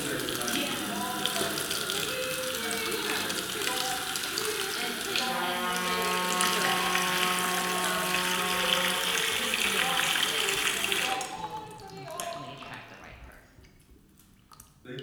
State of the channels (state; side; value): identical; both; correlation 1.00